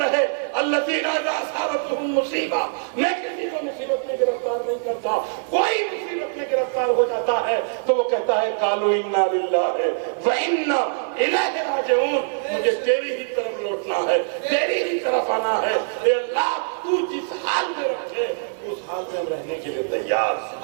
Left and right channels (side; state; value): left; silent; 56 dB below the other